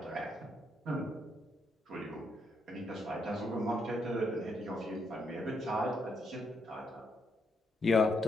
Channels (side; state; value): both; normal; correlation 0.77